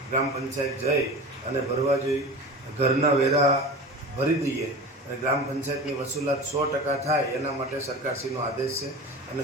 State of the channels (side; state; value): both; normal; correlation 0.32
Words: ગ્રામ પંચાયત જઈ અને ભરવા જોઈએ। ઘરના વેરા ભરી દઈએ અને ગ્રામ પંચાયતની વસૂલાત 100% થાય એના માટે સરકારશ્રીનો આદેશ છે અને